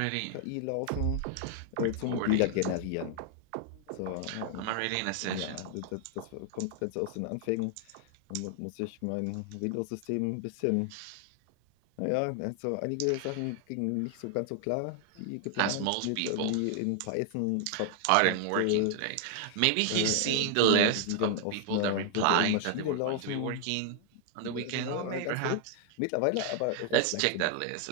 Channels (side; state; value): both; different; correlation 0.00